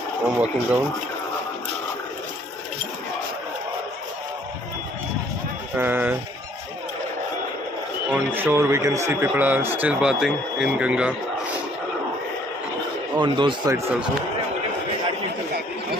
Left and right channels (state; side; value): normal; both; correlation 0.60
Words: I'm walking down. On shore we can see people are still bathing in Ganga. On those sides also.